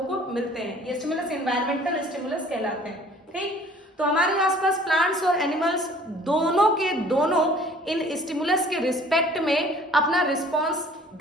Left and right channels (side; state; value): both; normal; correlation 0.52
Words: को मिलते हैं। ये स्टिमुलस इन्वायरमेंटल स्टिमुलस कहलाते हैं। ठीक, तो हमारे आसपास प्लांट्स और एनिमल्स दोनों के दोनों इन स्टिमुलस के रिस्पेक्ट में अपना रिस्पॉन्स